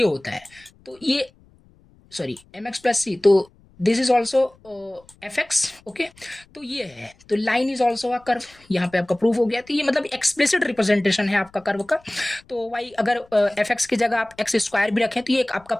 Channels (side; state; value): left; noise; rumble, 29 dB below the sound